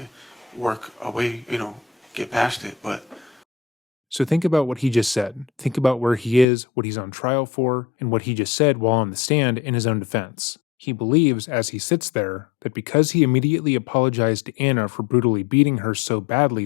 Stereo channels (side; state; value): right; drops out; at 6.5 s